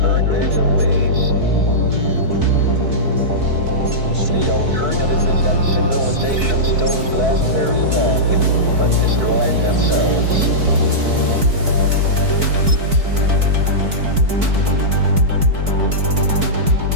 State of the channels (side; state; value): left; late; 4.6 ms